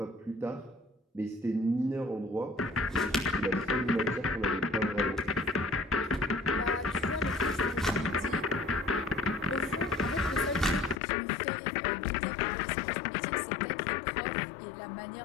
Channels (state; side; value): drops out; right; at 11.0 s